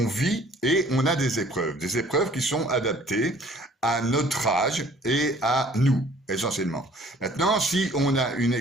vit et on a des épreuves qui sont adaptées à notre âge et à nous, essentiellement. Maintenant, si on a une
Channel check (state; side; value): normal; both; correlation 0.54